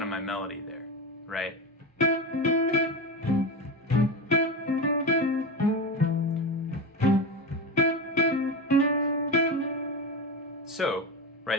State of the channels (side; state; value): both; normal; correlation 0.20